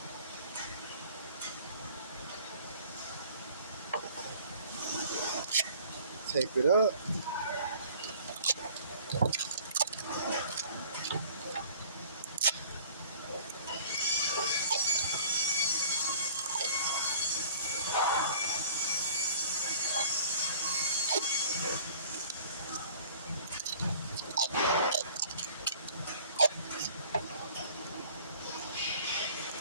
Tape it up.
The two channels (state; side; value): inverted; both; correlation -0.50